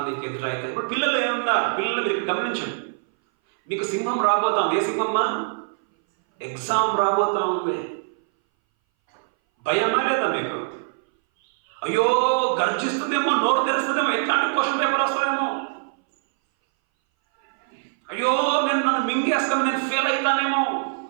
ఎదురైతే ఇప్పుడు పిల్లలు ఏమన్నారు, పిల్లలు మీరు గమనించండి. మీకు సింహం రాబోతాం. ఏ సింహమ్మా? ఎగ్జామ్ రాబోతా ఉంది. భయమా లేదా మీకు? అయ్యో గర్జిస్తుందేమో, నోరు తెరుస్తుందేమో, ఎట్లాంటి క్వశ్చన్ పేపర్ వస్తుందేమో, అయ్యో నన్ను మింగేస్తాము, నేను ఫెయిల్ అవుతానేమో.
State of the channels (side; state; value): left; silent; 60 dB below the other